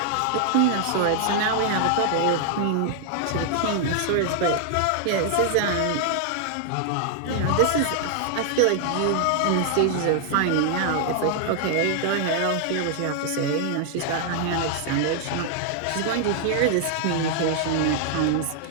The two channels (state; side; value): different; both; correlation 0.00